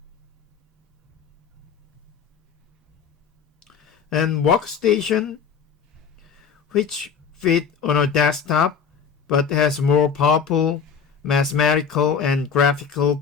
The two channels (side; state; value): right; quieter; 6.6 dB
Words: And workstation, which fit on a desktop but has more powerful mathematical and graphical